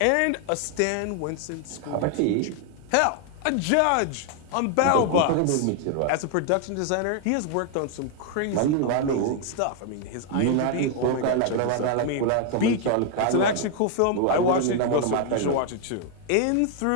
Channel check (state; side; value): different; both; correlation 0.00